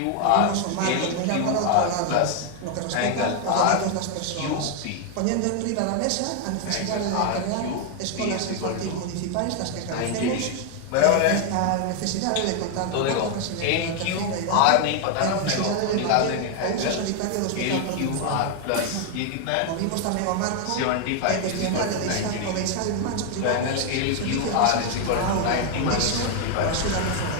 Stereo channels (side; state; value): both; different; correlation 0.00